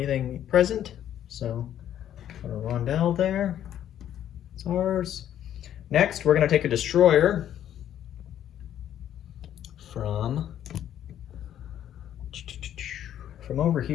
present. So put a rondelle there. It's ours. Next, we're going to take a destroyer from over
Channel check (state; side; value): quieter; right; 10.8 dB